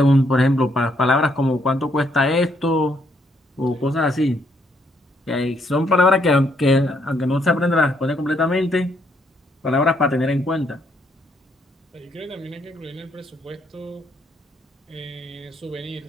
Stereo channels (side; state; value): both; normal; correlation 0.72